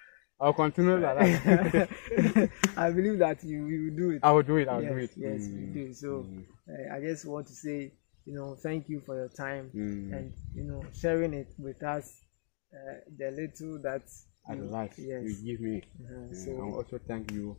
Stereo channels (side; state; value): right; silent; digital silence